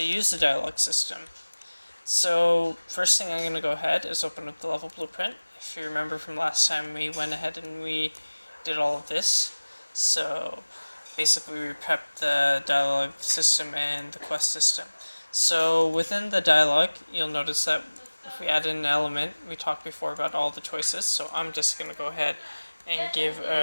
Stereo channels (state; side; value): inverted; both; correlation -1.00